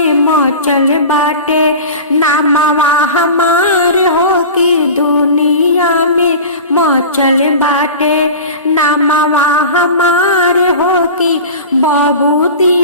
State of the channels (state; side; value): inverted; both; correlation -0.34